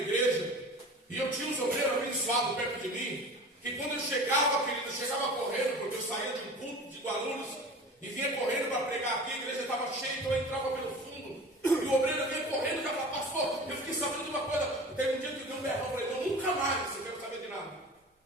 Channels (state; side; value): normal; both; correlation 0.38